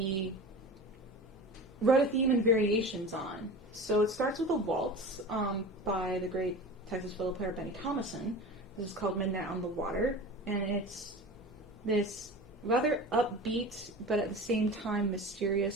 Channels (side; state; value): both; normal; correlation 0.33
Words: wrote a theme and variations on. So it starts with a waltz by the great Texas fiddle player Benny Thomason. This is called Midnight on the Water, and it's this rather upbeat but at the same time